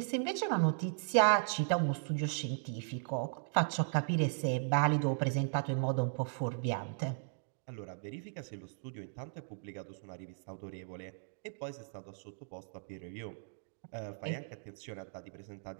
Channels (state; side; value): silent; left; digital silence